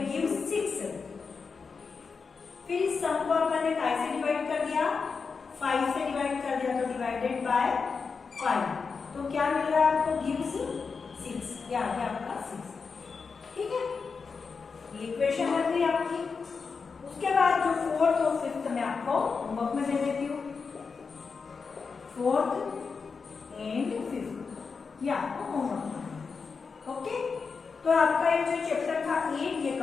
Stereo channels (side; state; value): right; quieter; 5.1 dB